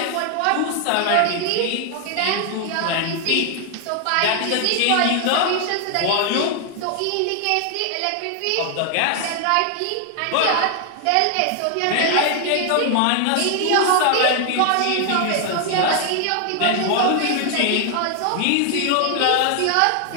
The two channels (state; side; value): different; both; correlation 0.00